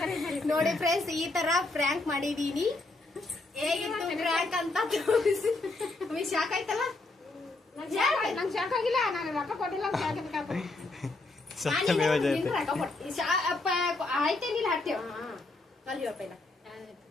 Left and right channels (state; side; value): quieter; right; 3.1 dB